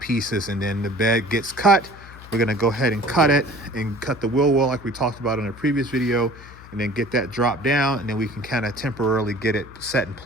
pieces, and then the bed gets cut. We're going to go ahead and cut it and cut the wheel well like we talked about in a previous video, and then get that dropped down, and then we can kind of temporarily get it set in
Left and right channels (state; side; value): noise; left; hum, 18 dB below the sound